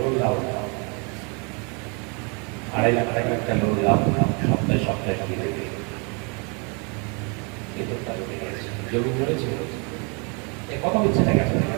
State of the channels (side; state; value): left; quieter; 33.8 dB